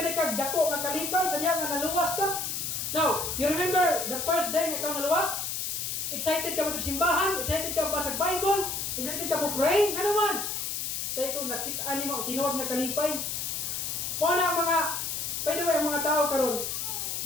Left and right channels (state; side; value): noise; left; hiss, 3 dB below the sound